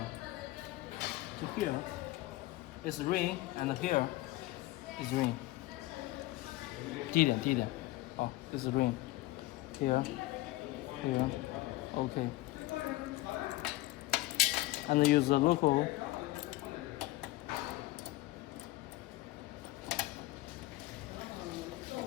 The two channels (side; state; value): right; quieter; 18.2 dB